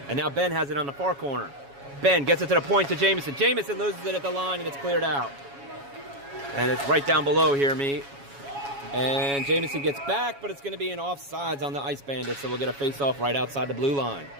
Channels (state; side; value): late; left; 7.2 ms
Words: and now Ben has it on the far corner. Ben gets it to the point to Jamison. Jamison loses it at the line, and it's cleared out. And it's right down below here, me. And Jamison gets back, but it's going to be an offsides on the Ice Bandits, so we'll get a face-off right outside the blue line.